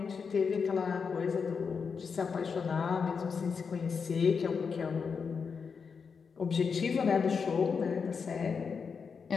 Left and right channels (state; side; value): quieter; right; 5.7 dB